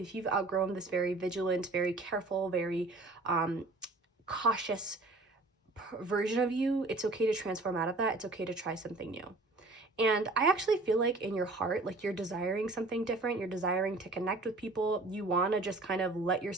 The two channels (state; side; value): quieter; left; 3.2 dB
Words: you've outgrown this very vigilant, very careful, very cautious version of you, it's okay to transform out of that. It's okay to try something new. And I actually feel like in your heart, like you're desiring something different. You're desiring to connect with people. You want to just kind of let